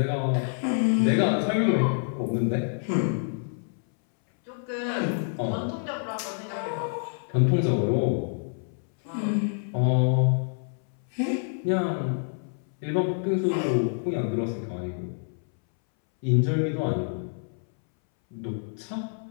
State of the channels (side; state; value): right; silent; 60 dB below the other